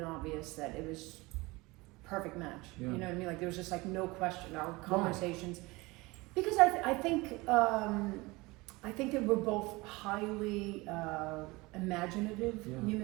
obvious that it was perfect match. You know what I mean? Like there was just like no question. Our conversations, because I think that we're both highly imaginative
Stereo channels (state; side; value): quieter; left; 22.8 dB